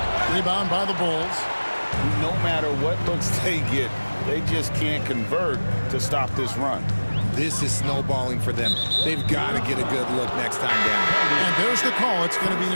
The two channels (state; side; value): inverted; both; correlation -1.00